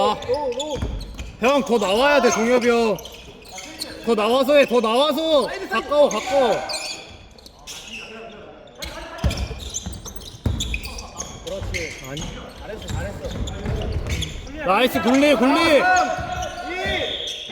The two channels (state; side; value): identical; both; correlation 1.00